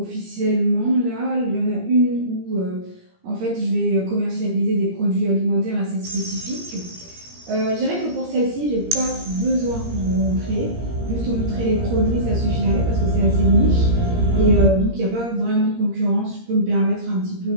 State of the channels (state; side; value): late; left; 17 ms